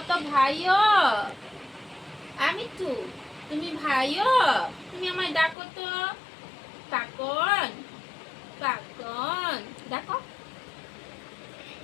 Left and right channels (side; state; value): right; drops out; at 5.6 s